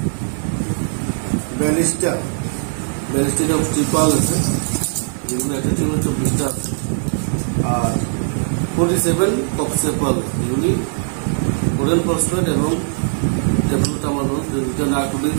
42টা স্টিক পাওয়া গেছে, যেগুলো একটা টিমের 24টা আছে, আর 47 ককসেপ পাওয়া গেছে, যেগুলি কোরিয়ান ফসফেট এবং ট্যাবলেটামানোল, দুটো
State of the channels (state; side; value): silent; left; digital silence